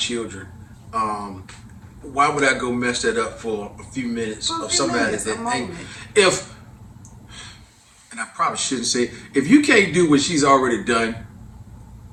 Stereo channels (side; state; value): both; identical; correlation 1.00